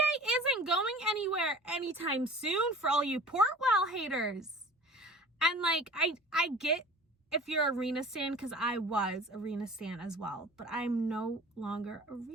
going anywhere anytime soon, for all you Portwell haters. And, like, I get if you're Arena stan, because I was Arena stan as well, but I'm no longer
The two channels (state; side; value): normal; both; correlation 0.43